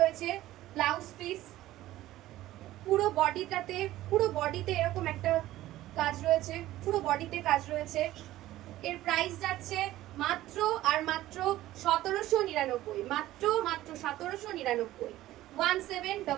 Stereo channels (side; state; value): left; quieter; 15.2 dB